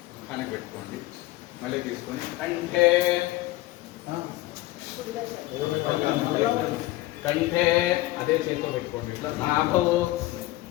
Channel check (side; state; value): right; quieter; 18.0 dB